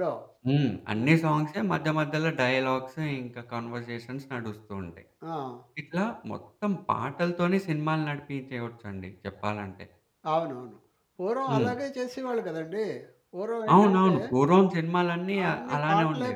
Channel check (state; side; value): identical; both; correlation 1.00